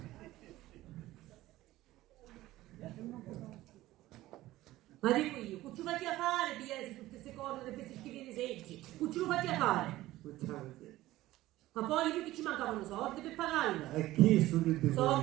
Ma dico io, che ci fai a fare, pigliare tutte queste cose, di questi schifi di seggi? Che ci lo fai a fare? Ma poi io che ci mancavano soldi per pagarla. E chi su che dico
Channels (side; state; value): left; quieter; 16.4 dB